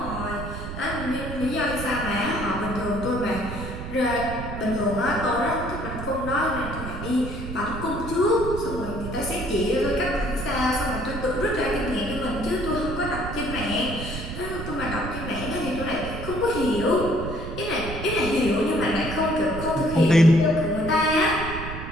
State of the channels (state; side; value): noise; right; rumble, 8 dB below the sound